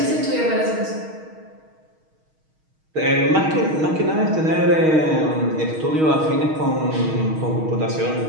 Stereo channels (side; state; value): left; late; 6.4 ms